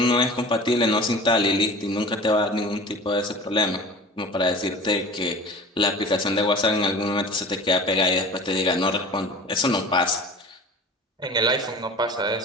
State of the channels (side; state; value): both; normal; correlation 0.39